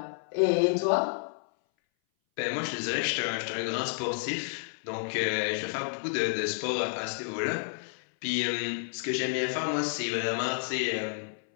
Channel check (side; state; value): right; silent; 58 dB below the other